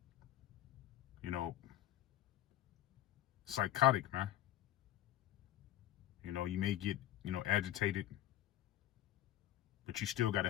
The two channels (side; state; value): right; quieter; 13.2 dB